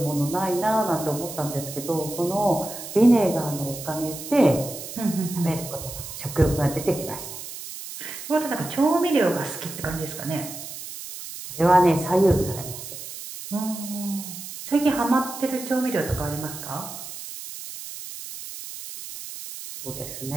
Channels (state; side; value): noise; right; hiss, 10 dB below the sound